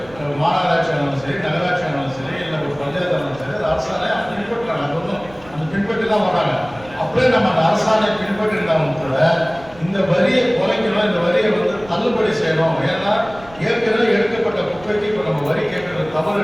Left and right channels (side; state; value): right; noise; rumble, 21 dB below the sound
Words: மாநகராட்சி ஆனாலும் சரி, நகராட்சி ஆனாலும் சரி, இல்லை ஒரு பஞ்சாயத்து ஆனாலும் சரி, அது அரசாணை அவங்க பின்பற்றுறாங்க. அது ஒன்றும் அந்த பின்பற்றி தான் வராங்க. அப்படியே நம்ம அந்த அரசாணை பின்பற்றிருந்தாலும் கூட இந்த வரியை குறைக்கணும், இந்த வரியை வந்து தள்ளுபடி செய்யணும். ஏன்னா ஏற்கனவே எடுக்கப்பட்ட குப்பைக்கு இப்போ நம்ம வரி கேட்கறது